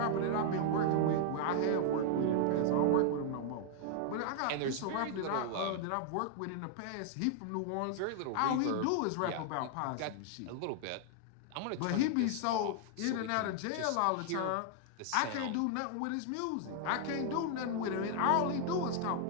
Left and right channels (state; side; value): different; both; correlation 0.00